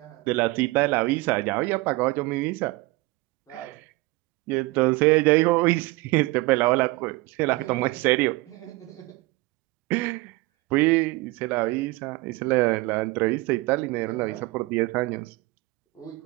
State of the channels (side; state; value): left; quieter; 21.9 dB